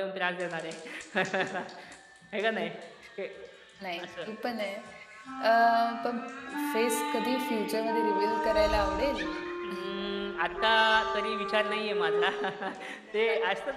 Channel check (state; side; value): identical; both; correlation 1.00